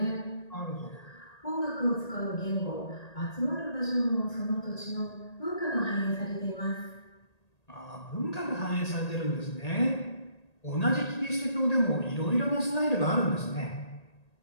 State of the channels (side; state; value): right; late; 1.8 ms